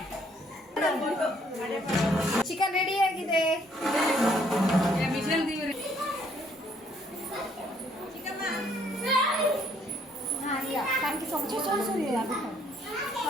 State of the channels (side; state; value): both; normal; correlation 0.66